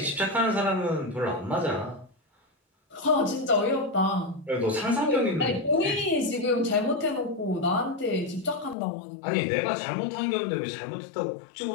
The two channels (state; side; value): drops out; right; at 8.8 s